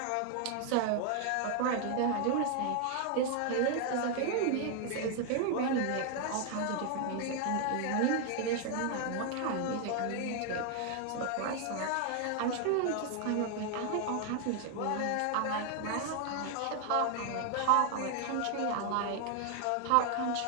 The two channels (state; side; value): different; both; correlation 0.00